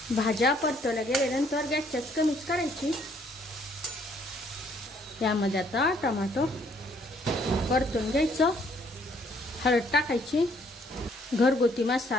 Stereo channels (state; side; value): normal; both; correlation 0.65